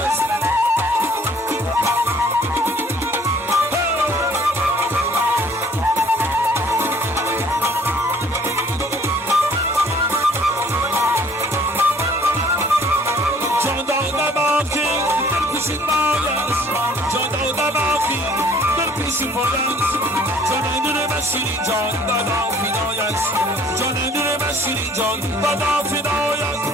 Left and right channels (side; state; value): both; normal; correlation 0.56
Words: شیرین جان دادا فدایت جان دل من شیرین جان دادا